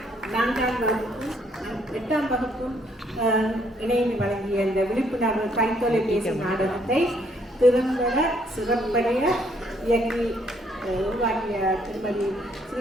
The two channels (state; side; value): normal; both; correlation 0.68